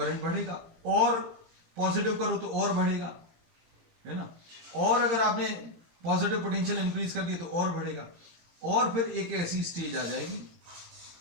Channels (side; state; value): left; late; 18 ms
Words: बढ़ेगा, और पॉजिटिव करो तो और बढ़ेगा, है ना। और अगर आपने पॉजिटिव पोटेंशियल इंक्रीज कर दिया तो और बढ़ेगा, और फिर एक ऐसी स्टेज आ जाएगी